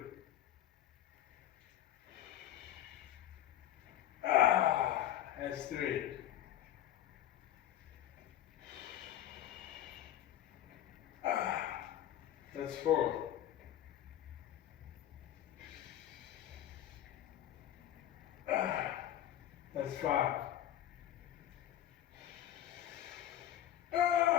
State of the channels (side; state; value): right; quieter; 12.0 dB